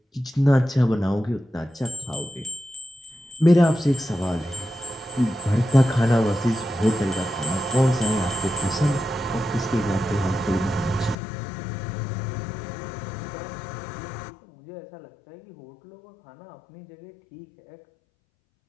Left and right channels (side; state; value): right; drops out; at 11.2 s